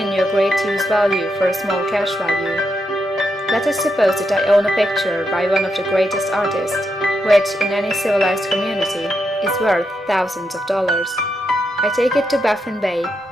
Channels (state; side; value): normal; both; correlation 0.83